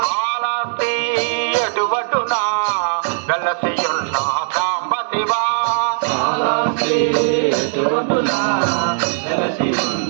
కాళహస్తి ఎటువటునా వెలసియున్న సాంబ శివ కాళహస్తి ఎటువటునా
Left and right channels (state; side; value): silent; left; digital silence